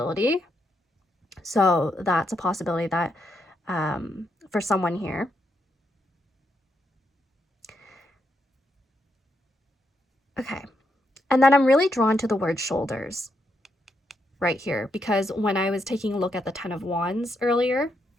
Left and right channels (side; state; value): both; normal; correlation 0.80